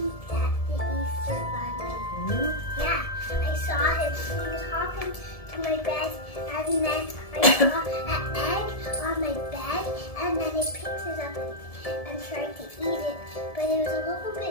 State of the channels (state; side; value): late; right; 1.7 ms